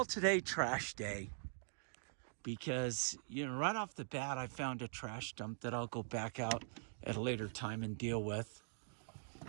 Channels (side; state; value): left; silent; digital silence